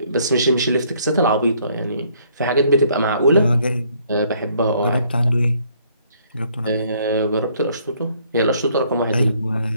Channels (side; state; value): both; inverted; correlation -0.65